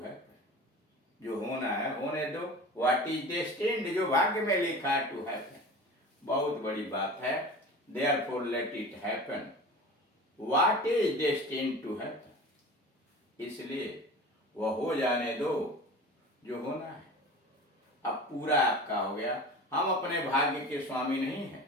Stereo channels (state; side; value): normal; both; correlation 0.36